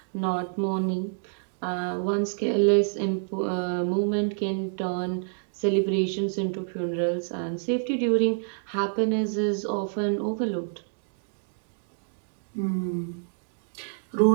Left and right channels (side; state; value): left; silent; digital silence